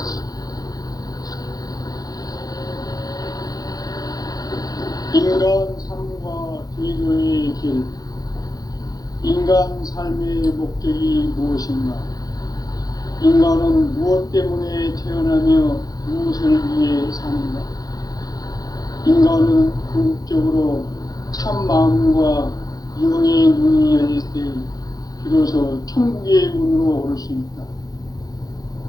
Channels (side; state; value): right; late; 0.18 ms